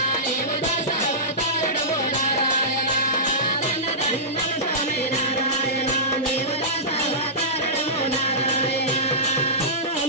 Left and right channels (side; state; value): both; normal; correlation -0.18